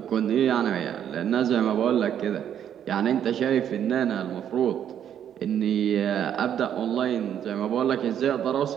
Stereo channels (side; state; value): left; quieter; 9.6 dB